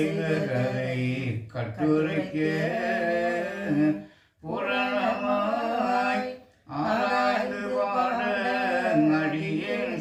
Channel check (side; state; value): both; identical; correlation 1.00